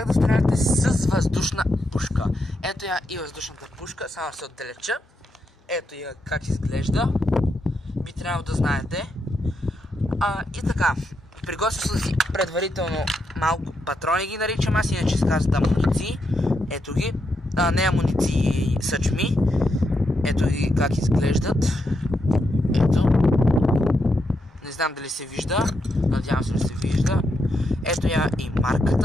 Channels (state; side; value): normal; both; correlation 0.82